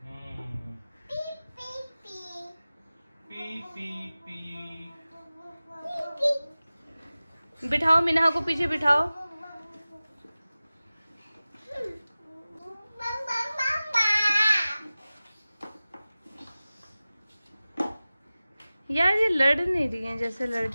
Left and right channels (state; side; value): inverted; both; correlation -0.97